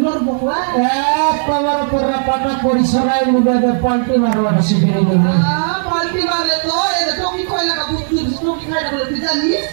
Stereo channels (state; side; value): silent; left; digital silence